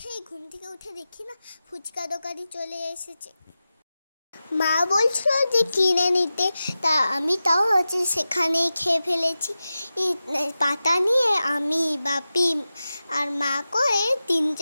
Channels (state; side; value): inverted; both; correlation -0.93